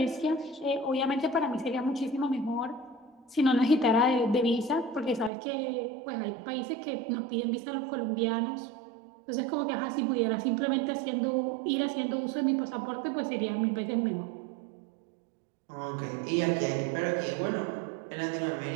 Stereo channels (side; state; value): left; drops out; at 5.3 s